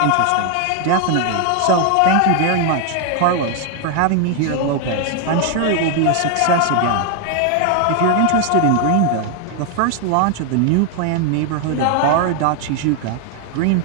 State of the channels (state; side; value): different; both; correlation 0.00